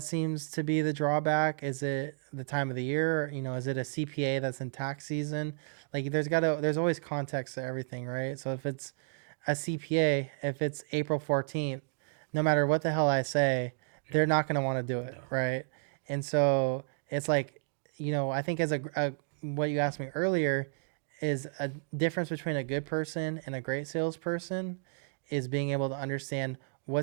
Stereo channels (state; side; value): silent; left; digital silence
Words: seems to be the drawback. Is it the time of the year? Is it a CPA that's in tax season? Like there's always context to everything, right? So if it's a CPA, if it's April 14th, no matter what the hell I say, they're not going to want to do it, No. right? And so it's like, I think as a what you asked me earlier is a difference between a good person and a great salesperson is being able to understand